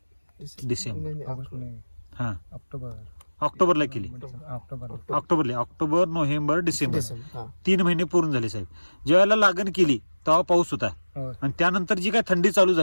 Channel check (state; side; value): inverted; both; correlation -1.00